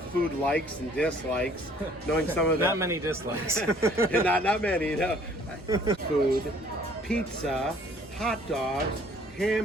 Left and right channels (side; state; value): both; normal; correlation 0.57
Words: likes and dislikes, knowing some of the... Not many dislikes. not many, no. Food, pizza, hot dogs,